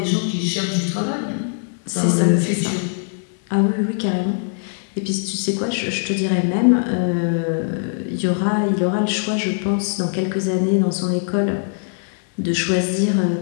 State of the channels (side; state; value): right; silent; 65 dB below the other